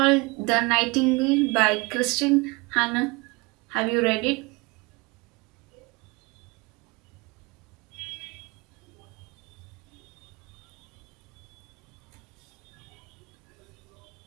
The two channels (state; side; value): quieter; left; 26.1 dB